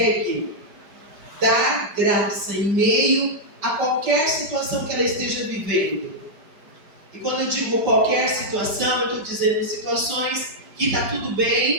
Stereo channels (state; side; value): late; left; 5.2 ms